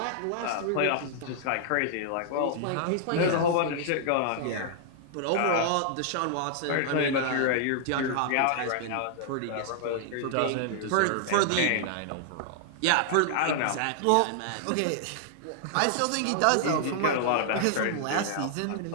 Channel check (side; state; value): both; different; correlation -0.01